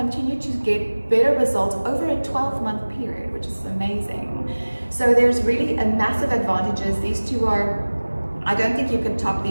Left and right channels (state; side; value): inverted; both; correlation -1.00